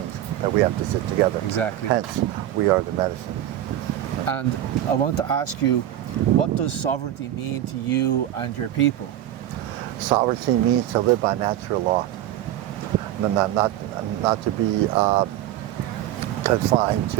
that we have to sit together. Exactly. Hence, we are the medicine. And I want to ask you, what does sovereignty mean to you and your people? Sovereignty means to live by natural law, not to be confined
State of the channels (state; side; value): quieter; left; 12.5 dB